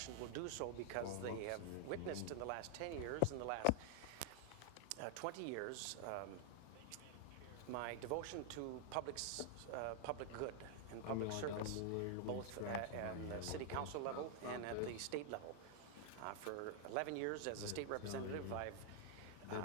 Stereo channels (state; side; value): different; both; correlation 0.00